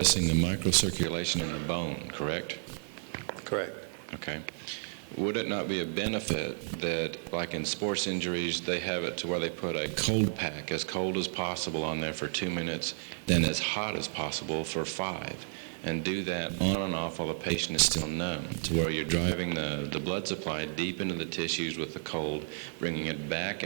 the microcirculation in the bone, correct? Correct. Okay. Would it not be a benefit that, like in sports injuries, they have it to where they put a cold pack, as cold as possible on there for 2 minutes, then as hot as possible for 5, and do that on and off while the patient is still numb, to where you're driving the blood supply deep into the tissues with the cold, bringing it back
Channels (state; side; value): silent; left; 56 dB below the other